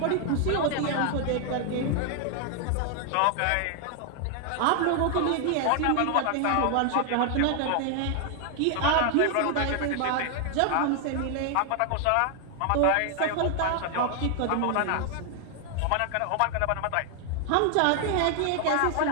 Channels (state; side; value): different; both; correlation 0.00